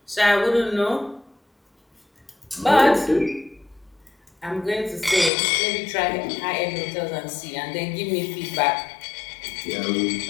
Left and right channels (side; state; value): right; drops out; at 5.3 s